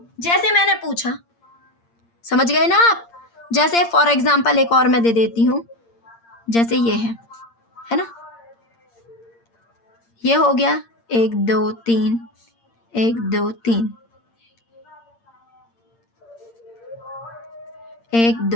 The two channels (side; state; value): right; late; 8.7 ms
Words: जैसे मैंने पूछा, समझ गए ना आप। जैसे फॉर एग्जाम्पल एक और मैं दे देती हूँ, जैसे ये है ना, ये हो गया 1 2 3 1 2 3 1